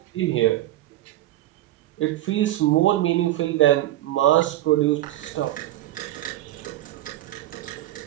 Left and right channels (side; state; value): left; quieter; 14.7 dB